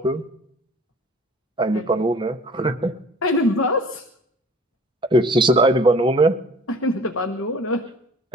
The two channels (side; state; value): both; normal; correlation 0.48